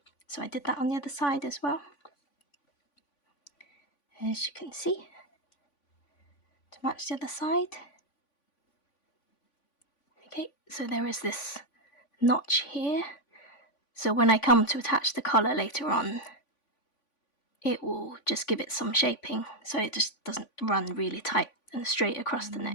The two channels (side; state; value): right; late; 3.5 ms